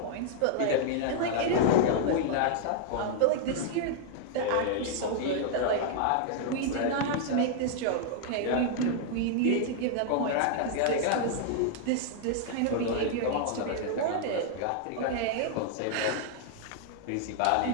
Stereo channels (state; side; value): different; both; correlation -0.01